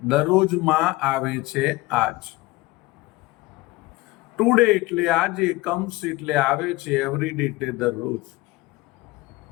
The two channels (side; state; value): right; quieter; 20.5 dB